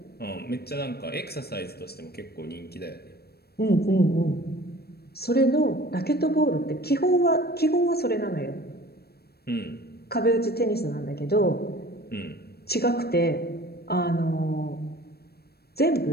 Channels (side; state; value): right; late; 0.46 ms